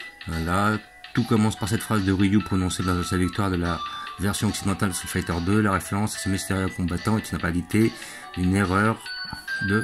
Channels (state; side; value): identical; both; correlation 1.00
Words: Voilà, tout commence par cette phrase de Ryu prononcée lors de sa victoire de la version occidentale de Street Fighter 2. La référence à ce mystérieux combattant est en réalité une erreur